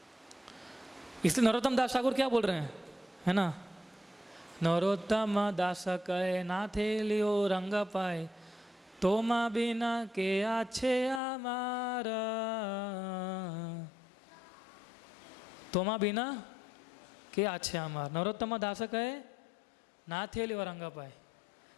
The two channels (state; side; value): drops out; right; at 11.2 s